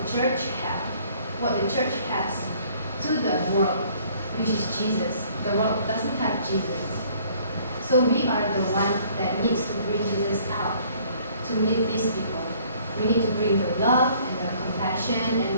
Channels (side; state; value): both; inverted; correlation -0.58